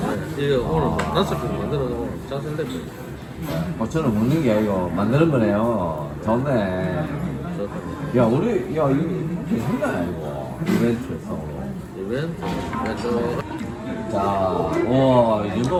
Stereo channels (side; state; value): both; identical; correlation 1.00